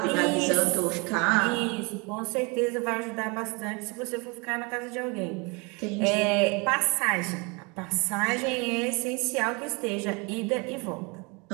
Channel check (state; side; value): quieter; left; 28.9 dB